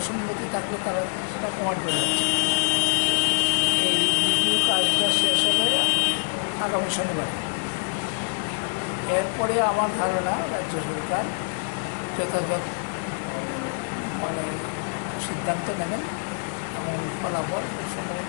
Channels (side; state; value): right; silent; 62 dB below the other